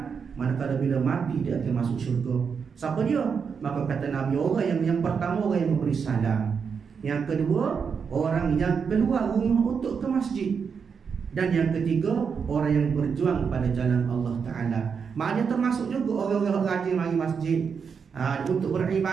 manakala bila mati dia akan masuk syurga. Siapa dia? Maka kata Nabi, orang yang pertama orang yang memberi salam, yang kedua orang yang keluar rumah untuk ke masjid, dan yang ketiga orang yang berjuang pada jalan Allah Ta'ala. Maknanya termasuk juga orang-orang rajin mari masjid, untuk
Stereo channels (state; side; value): quieter; left; 6.2 dB